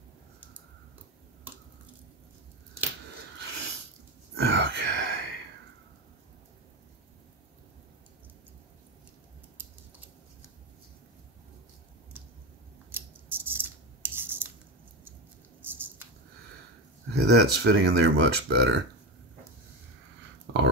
Okay, that's fitting in there much better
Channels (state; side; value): normal; both; correlation 0.19